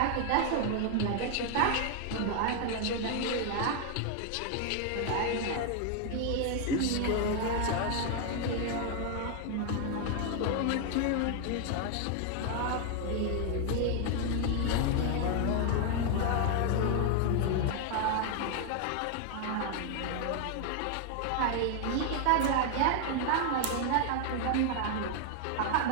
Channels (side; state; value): both; different; correlation 0.00